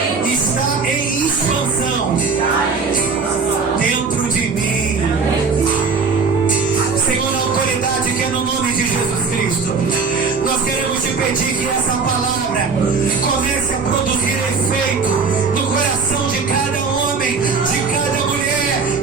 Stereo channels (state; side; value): quieter; left; 4.9 dB